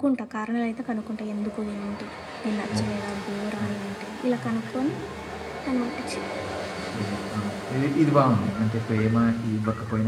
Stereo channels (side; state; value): both; identical; correlation 1.00